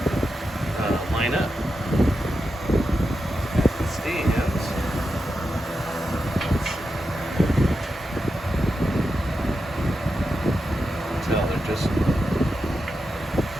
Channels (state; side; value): normal; both; correlation 0.88